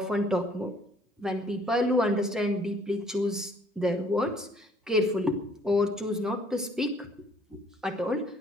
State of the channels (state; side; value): normal; both; correlation 0.60